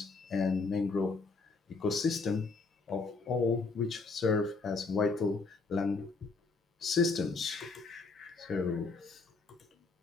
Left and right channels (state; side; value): quieter; right; 4.1 dB